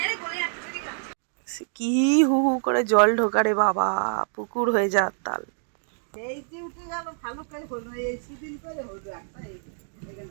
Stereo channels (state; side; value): silent; left; digital silence